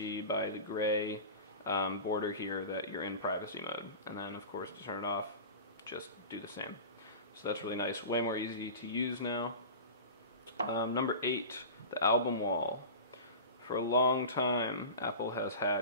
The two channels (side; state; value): both; inverted; correlation -0.32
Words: by the gray border here that you're in privacy mode. And then of course to turn it off, just do the same. So that's really nice, way more easy to use now. Number 8, the album wall. For a long time, Apple has